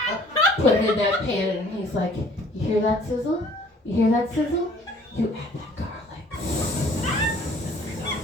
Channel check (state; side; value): normal; both; correlation 0.55